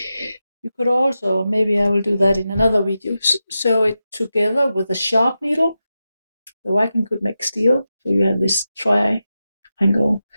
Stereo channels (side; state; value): both; inverted; correlation -0.90